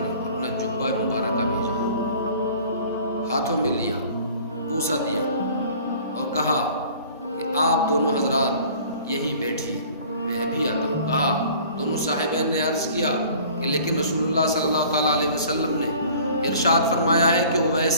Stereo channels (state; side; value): inverted; both; correlation -0.49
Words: اپنا جبہ مبارکہ بھیجا. ہاتھوں میں لیا، بوسہ دیا اور کہا کہ آپ دونوں حضرات یہیں بیٹھیے، میں بھی آتا ہوں. کہا دونوں صاحبین نے عرض کیا کہ لیکن رسول اللہ صلی اللہ تعالیٰ علیہ وسلم نے ارشاد فرمایا ہے کہ اویس